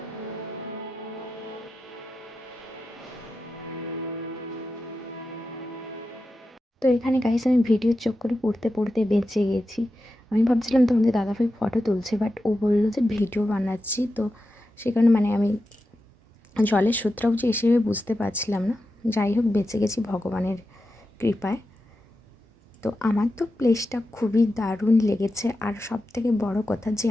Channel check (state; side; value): normal; both; correlation 0.91